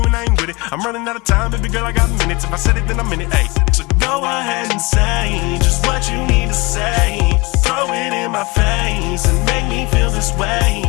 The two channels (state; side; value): quieter; right; 25.0 dB